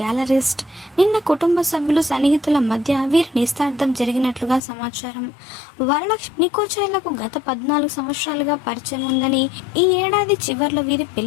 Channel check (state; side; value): drops out; right; at 4.6 s